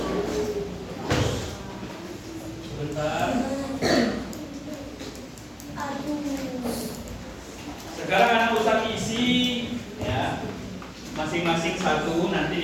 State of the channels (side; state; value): both; identical; correlation 1.00